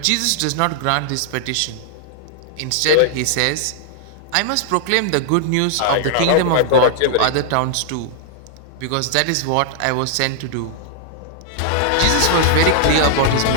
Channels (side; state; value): both; different; correlation -0.01